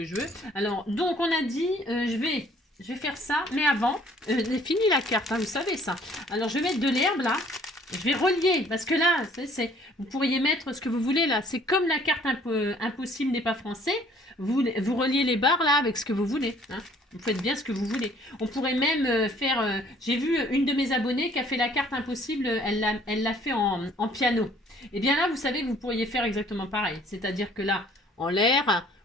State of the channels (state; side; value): normal; both; correlation 0.58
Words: je veux. Alors, donc on a dit, je vais faire ça, mais avant, j'ai fini la carte, hein, vous savez ça. Alors, je vais mettre de l'herbe là. Je vais relier, parce que là, vous pourriez mettre ce que vous voulez là. C'est comme la carte impossible n'est pas français. Vous reliez les barres là avec ce que vous voulez. Hein. Vous faites bien ce que vous voulez. On pourrait même faire... J'ai vu une de mes abonnées qui a fait la carte impossible, elle l'a fait en piano. Et bien là, vous savez que vous pourriez faire exactement pareil. C'est-à-dire que là, en l'air,